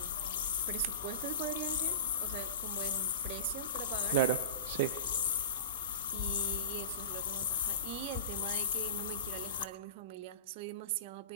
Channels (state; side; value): inverted; both; correlation -0.30